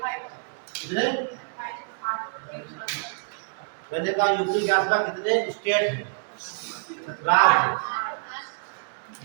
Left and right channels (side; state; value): left; silent; digital silence